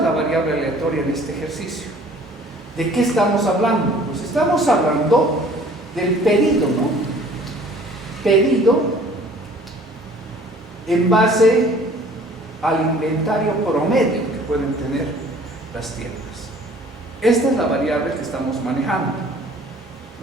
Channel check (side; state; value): both; normal; correlation 0.52